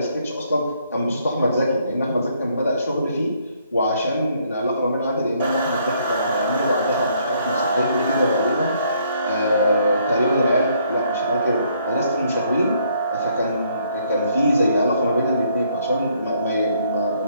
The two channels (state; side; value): inverted; both; correlation -0.68